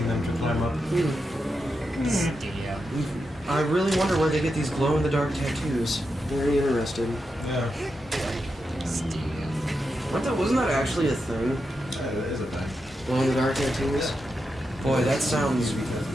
them to climb up. Yeah. I really wonder where they get these glow-in-the-dark tattoos. Very interested. Yeah. Wasn't that actually a thing? Yeah, that is a thing. Glow-in-the-dark tattoos? Boy, that sounds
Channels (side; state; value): both; normal; correlation 0.87